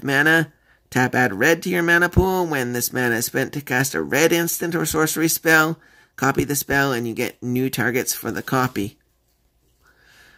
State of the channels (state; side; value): identical; both; correlation 1.00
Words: mana. Tap add red to your mana pool. When this mana is spent to cast a red instant or sorcery spell, copy the spell and you get new targets for the copy.